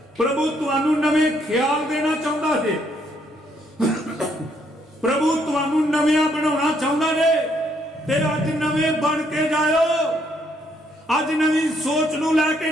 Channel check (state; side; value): normal; both; correlation 0.71